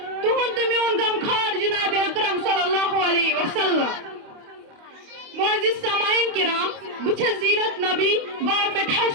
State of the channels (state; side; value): late; left; 28 ms